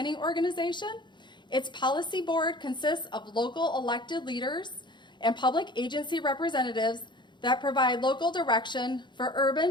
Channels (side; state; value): right; late; 0.22 ms